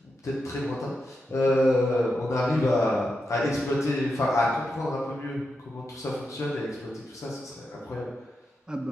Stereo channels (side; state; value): both; normal; correlation 0.87